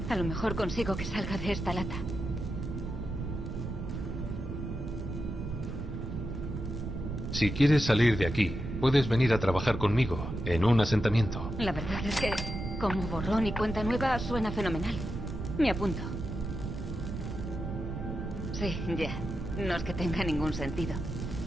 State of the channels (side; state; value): right; noise; rumble, 5 dB below the sound